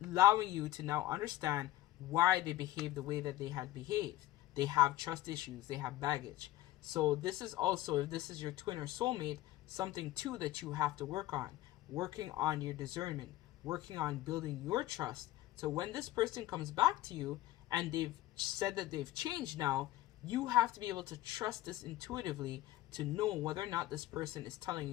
allowing you to now understand why they behaved the way that they had behaved. They have trust issues. They have baggage. So this is also, if this is your twin or soulmate, something too that you have to work on. Working on your discernment. Working on building your trust. So when this person comes back to you and they've said that they've changed now, you have to be able to trust this intuitively to know whether or not this person is telling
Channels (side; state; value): right; quieter; 15.7 dB